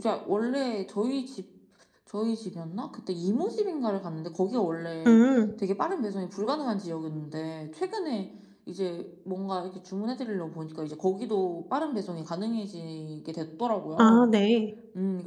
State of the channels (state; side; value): identical; both; correlation 1.00